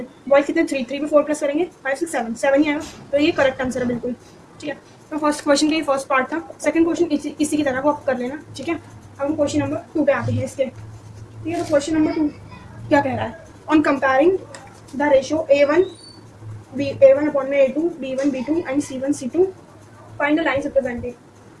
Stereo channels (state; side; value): identical; both; correlation 1.00